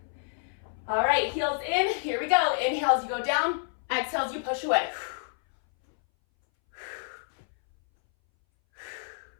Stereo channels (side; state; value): right; silent; 59 dB below the other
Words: All right, heels in. Here we go. Inhale as you go down. Exhale as you push away.